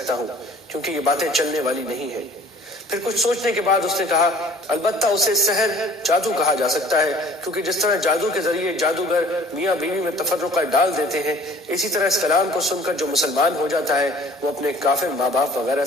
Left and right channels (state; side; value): normal; both; correlation 0.50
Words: ہوں، کیونکہ یہ باتیں چلنے والی نہیں ہیں۔ پھر کچھ سوچنے کے بعد اس نے کہا البتہ اسے سحر جادو کہا جا سکتا ہے، کیونکہ جس طرح جادو کے ذریعے جادوگر میاں بیوی میں تفرقہ ڈال دیتے ہیں، اسی طرح اس کلام کو سن کر جو مسلمان ہو جاتا ہے وہ اپنے کافر ماں باپ وغیرہ